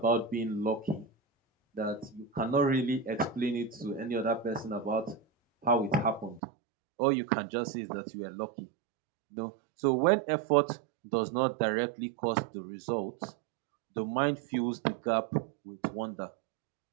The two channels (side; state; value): left; drops out; at 6.4 s